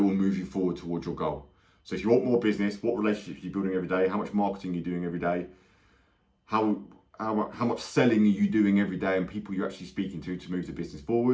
will move you forward towards your goal? So if you want more business, what relationships are you building every day? How much marketing are you doing every day? How much selling are you doing every day, and people you're actually speaking to move the business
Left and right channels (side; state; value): both; identical; correlation 1.00